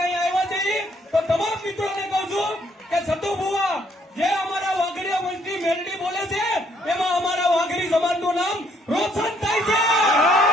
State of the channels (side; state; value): both; normal; correlation 0.68